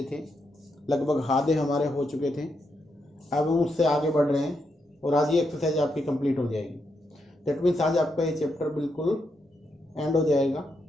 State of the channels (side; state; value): both; normal; correlation 0.82